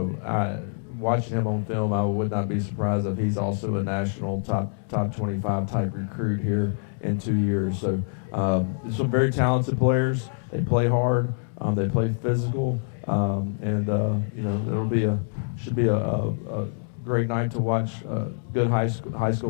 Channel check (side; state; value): right; silent; digital silence